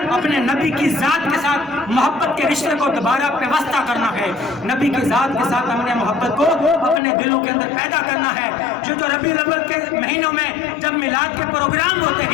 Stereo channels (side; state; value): right; drops out; at 7.0 s